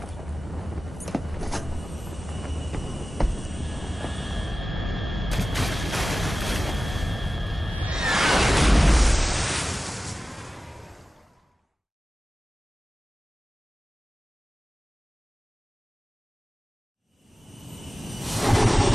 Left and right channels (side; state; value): both; normal; correlation 0.96